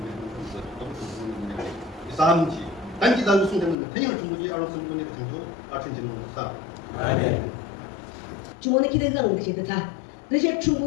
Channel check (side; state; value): right; drops out; at 3.8 s